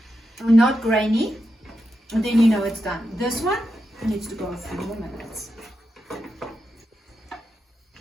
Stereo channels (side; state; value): both; normal; correlation 0.87